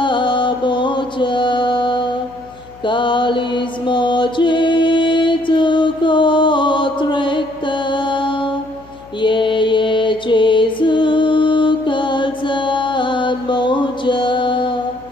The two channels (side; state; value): left; noise; hum, 25 dB below the sound